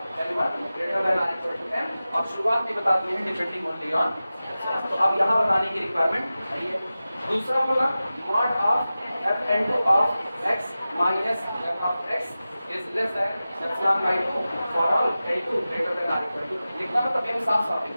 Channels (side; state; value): both; inverted; correlation -0.95